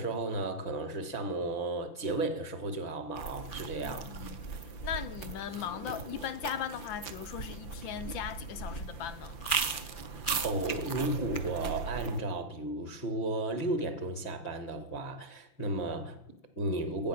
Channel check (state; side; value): late; right; 5.9 ms